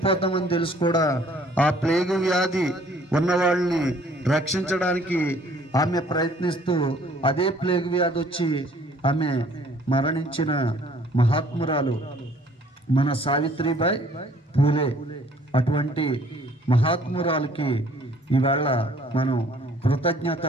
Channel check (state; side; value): normal; both; correlation 0.58